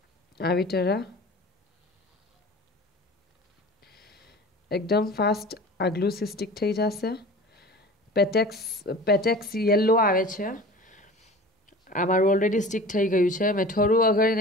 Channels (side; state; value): both; normal; correlation 0.39